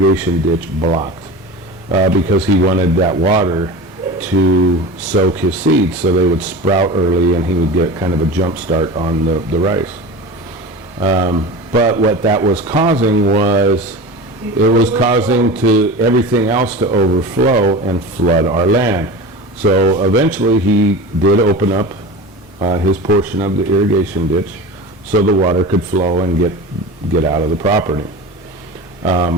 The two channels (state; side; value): normal; both; correlation 0.31